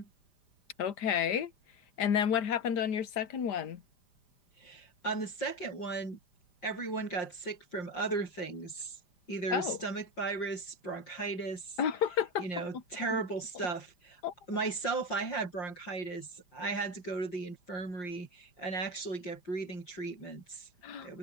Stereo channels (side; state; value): right; late; 5.0 ms